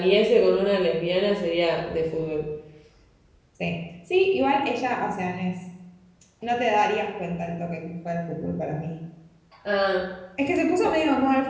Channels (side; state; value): both; identical; correlation 1.00